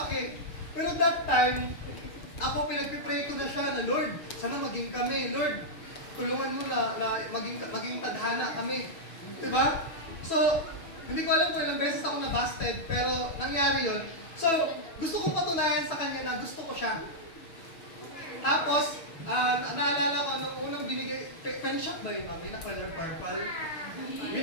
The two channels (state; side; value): late; right; 6.2 ms